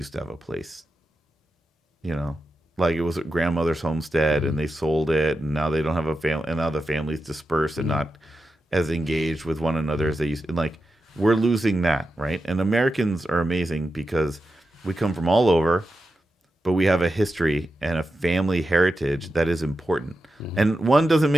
to have a place, it was a grandmother's homestead, and they sold it, and now they don't have a family, and now the family's dispersed and not as engaged with one another as they used to." And we're losing that, right? And Americans are amazing because we come from all over, but we have a history and a family heritage that is important. And one doesn't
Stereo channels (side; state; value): both; normal; correlation 0.90